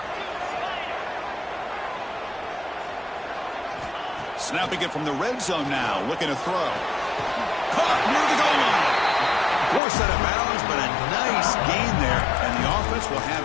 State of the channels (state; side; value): drops out; right; at 9.8 s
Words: Snapping it from the red zone now, looking to throw. Caught near the goal line. Forced out of bounds, but a nice gain there, and the offense will have